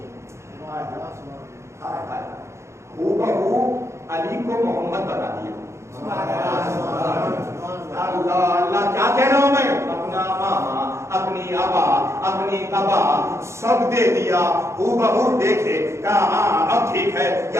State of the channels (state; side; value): late; left; 0.13 ms